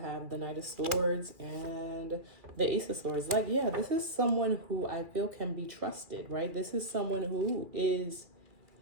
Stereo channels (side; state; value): left; late; 2.4 ms